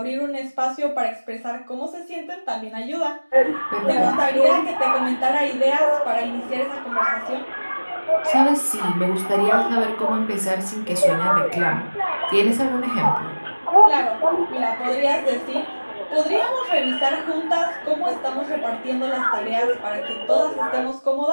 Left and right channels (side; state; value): both; inverted; correlation -1.00